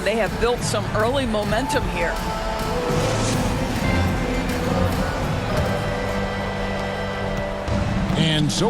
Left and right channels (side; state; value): both; identical; correlation 1.00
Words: They have built some early momentum here. And